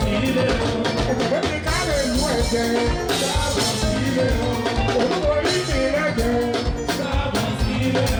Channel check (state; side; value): identical; both; correlation 1.00